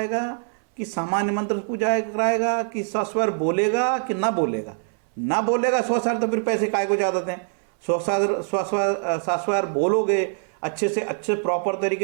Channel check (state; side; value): silent; left; 63 dB below the other